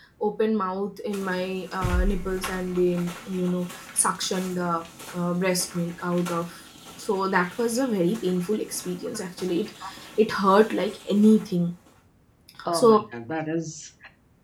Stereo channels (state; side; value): identical; both; correlation 1.00